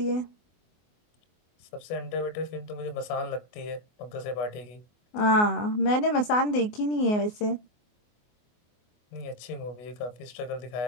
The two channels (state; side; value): late; right; 24 ms